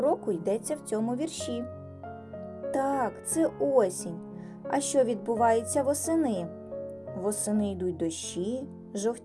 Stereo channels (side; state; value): both; identical; correlation 1.00